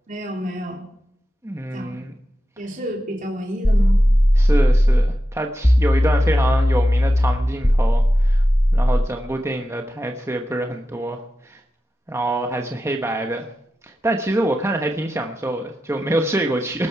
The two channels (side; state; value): both; normal; correlation 0.91